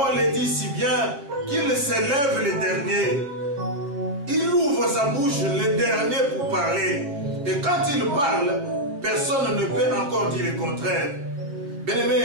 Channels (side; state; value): left; late; 7.2 ms